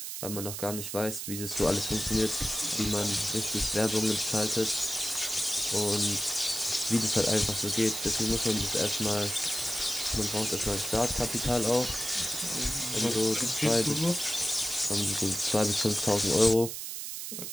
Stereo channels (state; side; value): noise; right; hiss, 6 dB below the sound